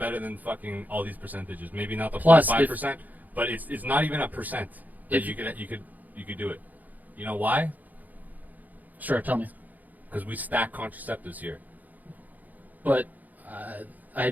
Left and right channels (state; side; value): late; left; 0.081 ms